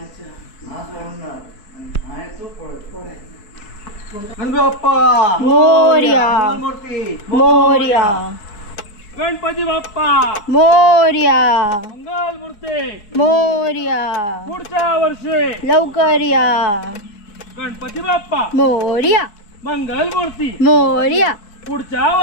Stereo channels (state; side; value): late; right; 4.7 ms